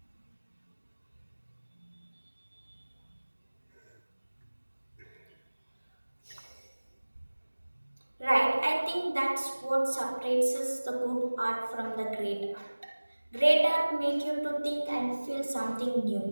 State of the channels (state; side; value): inverted; both; correlation -1.00